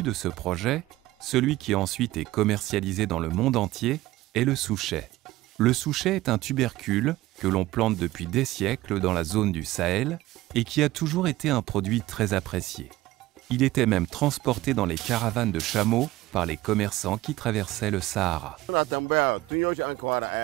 de ce projet, celui qui ensuite est commercialisé dans le monde entier, est le souchet. Le souchet est un tubercule que l'on plante depuis des siècles dans la zone du Sahel et qui a toujours été un produit très apprécié. Il était même transporté dans les caravanes de chameaux par les commerçants qui traversaient le Sahara.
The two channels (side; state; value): left; quieter; 17.2 dB